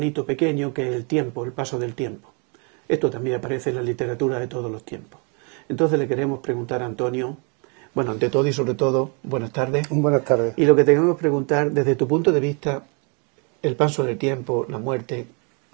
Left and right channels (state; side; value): quieter; left; 35.2 dB